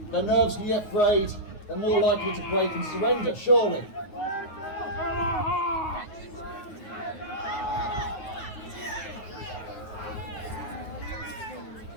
Their nerves can get frayed, they're more likely to break and surrender, surely.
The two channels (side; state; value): right; late; 9.3 ms